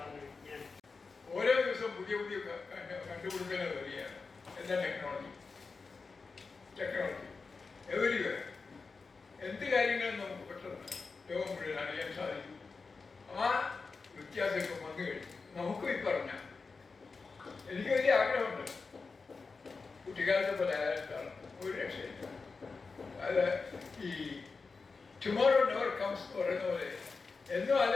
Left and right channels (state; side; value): quieter; right; 4.4 dB